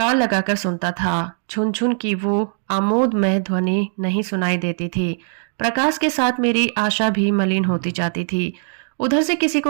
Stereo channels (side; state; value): left; silent; digital silence